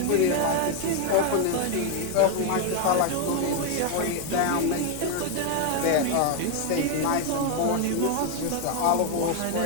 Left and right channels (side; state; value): both; different; correlation 0.01